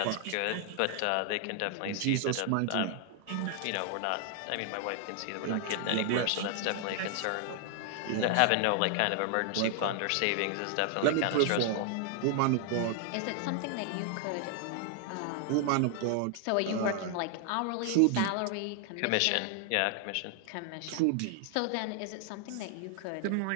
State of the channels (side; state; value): both; different; correlation 0.00